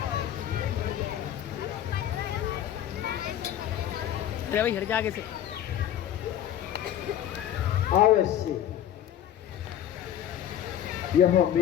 भाई हट जा आगे से। अवश्य यह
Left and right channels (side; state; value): right; quieter; 10.9 dB